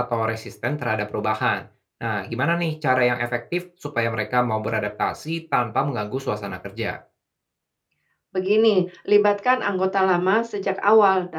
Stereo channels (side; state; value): both; identical; correlation 1.00